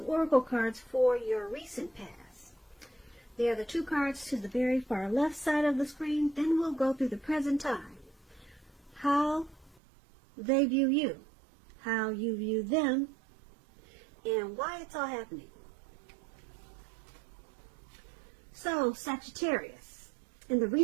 oracle cards for your recent past. They are the 2 cards to the very far left side of the screen. Then we'll go through the present time. How they view you, how you view them, and why it's all happening. So, Sagittarius, in the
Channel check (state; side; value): drops out; left; at 9.8 s